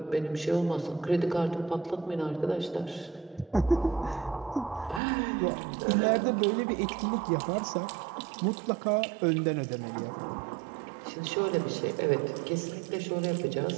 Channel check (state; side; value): drops out; left; at 5.0 s